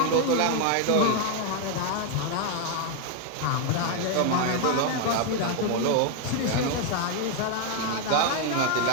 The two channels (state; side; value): different; both; correlation 0.00